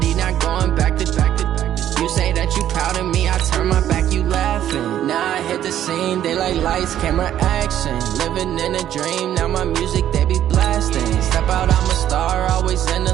not going back to. You say that you proud of me, I turn my back, you laughing. Now I hit the scene, they like lights, camera, action. Living in a dream, now my music, they be blasting. Step out, I'm a star, always in the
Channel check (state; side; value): quieter; left; 11.3 dB